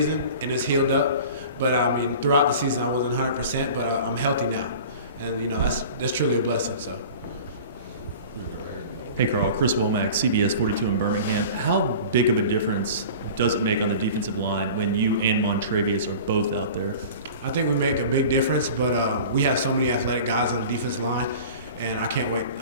and it's healed up. But throughout the season I wasn't 100%, but I'm healthy now, and that's truly a blessing. So. Hey Carl, Chris Womack, CBS 42 in Birmingham. How big of a difference does it make on the defensive line when you and Montrevious are both out there? I think we make a big difference, but we have so many athletic guys on the defensive line, and I can't wait.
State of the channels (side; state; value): both; inverted; correlation -0.40